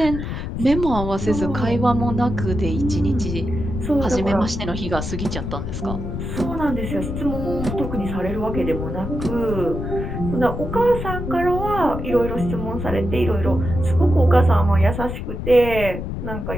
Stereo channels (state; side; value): noise; left; rumble, 5 dB below the sound